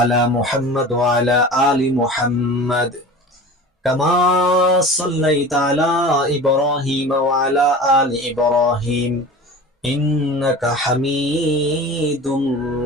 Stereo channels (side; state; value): both; normal; correlation 0.36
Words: মুহাম্মাদ ওয়া আলা আলি মুহাম্মাদ কামা সাল্লাইতা আলা ইব্রাহিম ওয়া আলা আলি ইব্রাহিম ইন্নাকা হামিদুম